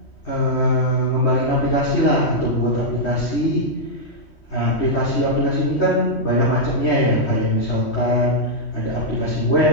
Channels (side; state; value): right; late; 3.1 ms